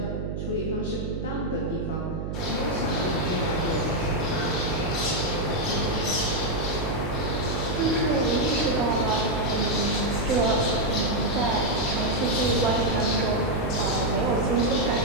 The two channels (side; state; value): right; noise; hum, 4 dB below the sound